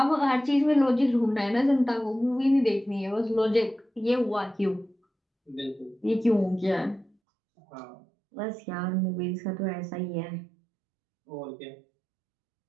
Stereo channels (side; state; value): left; drops out; at 7.1 s